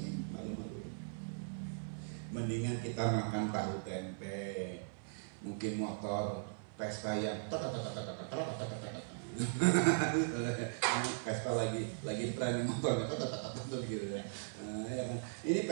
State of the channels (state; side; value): silent; left; 52 dB below the other